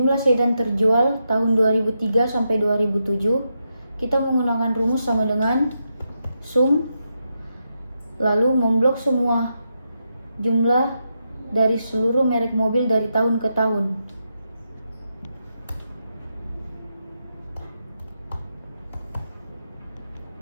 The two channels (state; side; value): inverted; both; correlation -0.84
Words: sedan terjual tahun 2003 sampai 2007, kita menggunakan rumus sama dengan sum lalu memblok semua jumlah dari seluruh merek mobil dari tahun ke tahun.